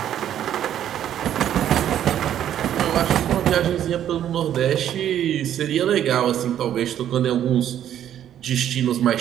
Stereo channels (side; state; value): left; quieter; 10.6 dB